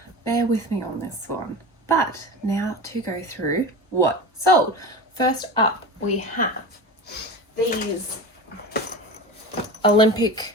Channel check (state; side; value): normal; both; correlation 0.29